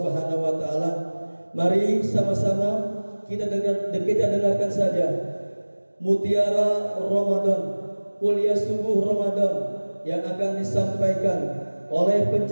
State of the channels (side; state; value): both; inverted; correlation -1.00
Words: wa taala, mari sama-sama kita dengarkan saja Mutiara Ramadan, kuliah subuh Ramadan yang akan disampaikan oleh